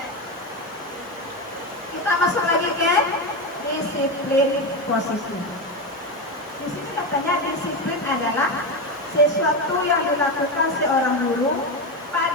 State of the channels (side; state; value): both; normal; correlation 0.15